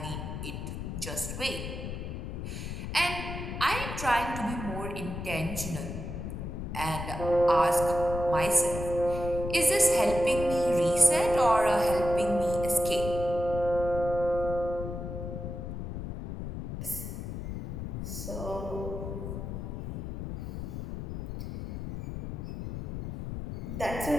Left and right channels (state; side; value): noise; left; rumble, 6 dB below the sound